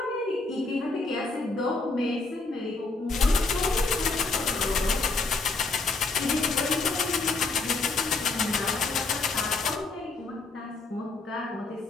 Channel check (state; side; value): quieter; right; 3.8 dB